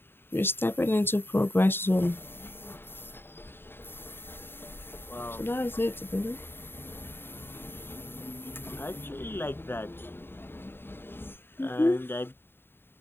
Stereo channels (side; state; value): right; late; 0.11 ms